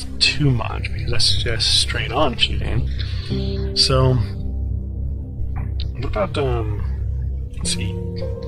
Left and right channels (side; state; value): both; identical; correlation 1.00